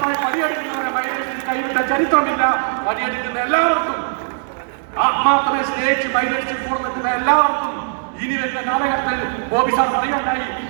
പണിയെടുക്കുന്നവരെ മൈലേജ് കൈവിട്ട ചരിത്രമില്ല. പണിയെടുക്കുന്ന എല്ലാവർക്കും, ആത്മാർത്ഥമായി സ്റ്റേജ് മൈലേജ് കൂടെ നിൽക്കുന്ന എല്ലാവർക്കും ഇനി വരുന്ന കാലഘട്ടത്തിൽ ബോബി സാർ പറയുകയുണ്ടായി,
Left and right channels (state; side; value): silent; left; digital silence